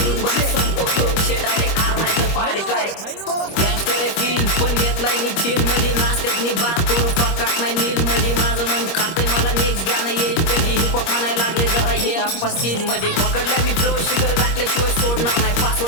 बाहेर संपवतो विषय डायरेक्ट आर नाही तर पारे काय गँगस्टर आहे फील पण घेतलाय मी चिल मध्ये, नाश्त्यात मी बात करू पकाट नाही नील मध्ये, माझं मन खातंय मला नेक्स्ट गाणं येईल कधी, हिपहॉप म्हणायला लागले जरा हे आप्पा सीन मध्ये, पकडलाय मी फ्लो शिखर गाठल्याशिवाय सोडणार नाही,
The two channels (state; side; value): late; right; 25 ms